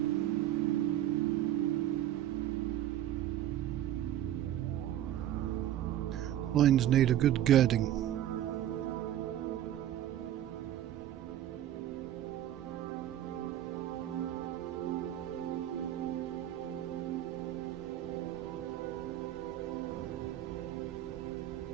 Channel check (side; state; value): left; quieter; 12.1 dB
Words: Loins need a good girding.